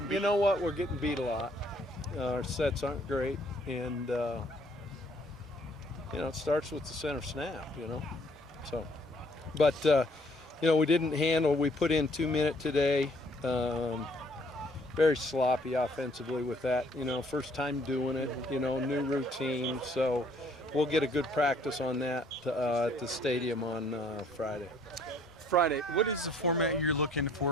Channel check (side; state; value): both; normal; correlation 0.62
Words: beat? You know what? We're getting beat a lot. Our sets aren't great, and it starts with the center snap. So, but we didn't handle. We put in 2 minute today. Very sloppy offensively with that. First time doing it. New routine. So we'll get a good practice on that at the stadium on Friday. What is the format you're looking